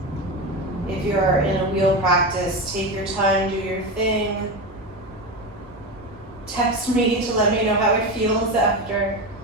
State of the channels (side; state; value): both; normal; correlation 0.20